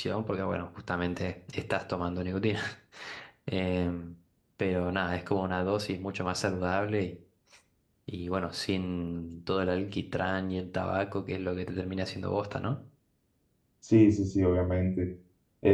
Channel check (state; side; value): identical; both; correlation 1.00